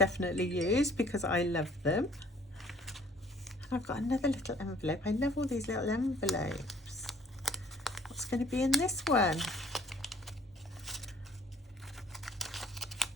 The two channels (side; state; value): both; normal; correlation 0.55